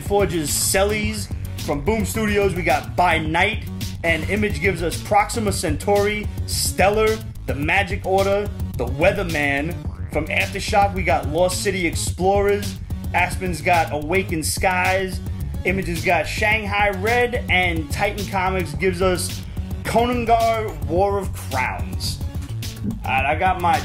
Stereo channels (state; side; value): identical; both; correlation 1.00